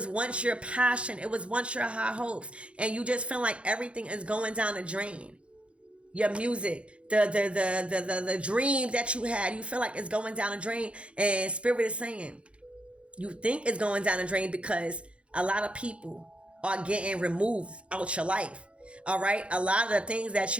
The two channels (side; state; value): left; late; 0.060 ms